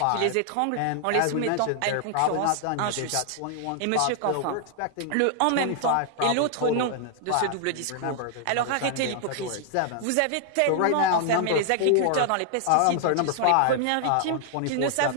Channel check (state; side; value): different; both; correlation 0.00